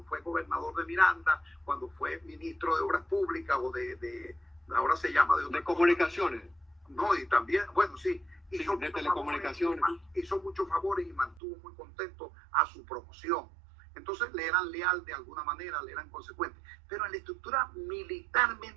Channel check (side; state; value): left; drops out; at 11.4 s